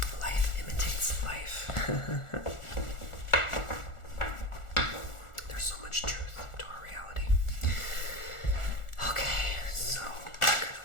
Life imitates life. There's so much truth to our reality. Okay, so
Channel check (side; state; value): right; late; 1.4 ms